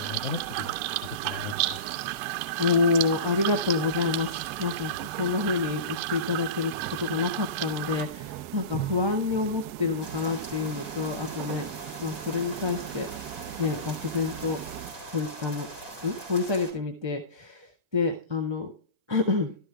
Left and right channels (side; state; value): left; late; 1.6 ms